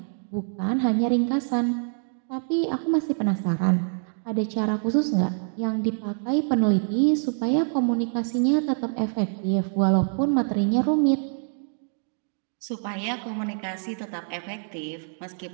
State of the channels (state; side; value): silent; left; 60 dB below the other